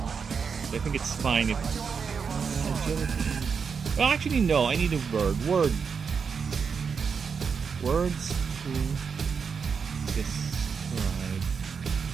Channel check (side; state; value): left; quieter; 6.0 dB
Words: I think it's fine if agility. Well, actually, no. I need a word. Words to describe.